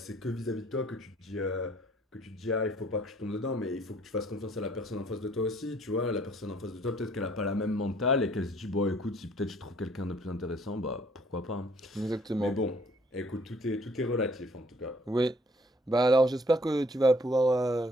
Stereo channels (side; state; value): both; normal; correlation 0.60